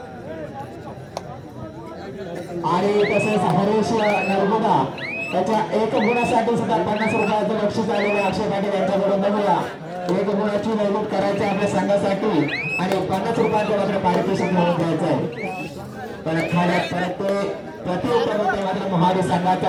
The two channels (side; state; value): both; identical; correlation 1.00